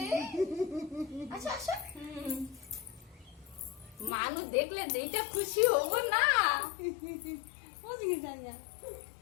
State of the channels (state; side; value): drops out; right; at 4.1 s